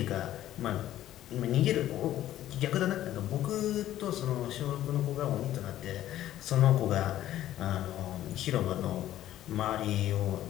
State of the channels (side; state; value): right; quieter; 13.0 dB